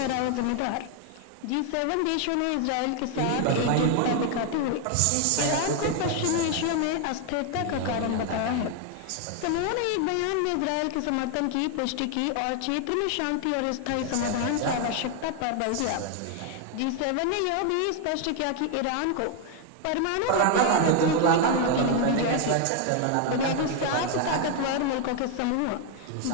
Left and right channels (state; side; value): different; both; correlation 0.01